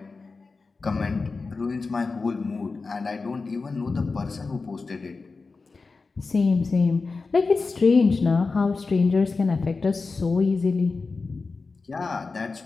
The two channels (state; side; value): quieter; right; 4.1 dB